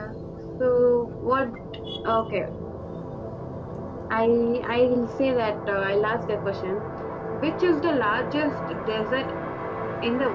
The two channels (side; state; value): both; identical; correlation 1.00